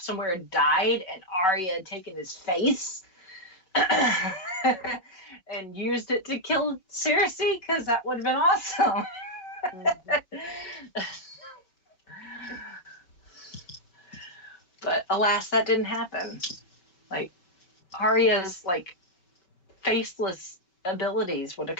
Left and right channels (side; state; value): right; late; 5.3 ms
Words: somewhere and died, and Arya had taken his face and used it to kill Cersei, because that would have been awesome. But alas, that didn't happen. Arya's faceless abilities would have